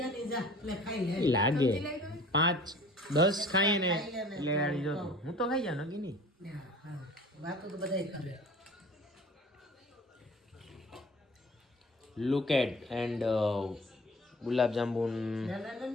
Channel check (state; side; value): normal; both; correlation 0.46